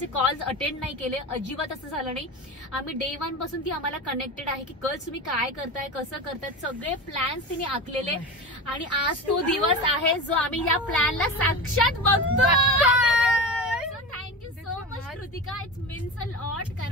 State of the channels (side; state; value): both; normal; correlation 0.26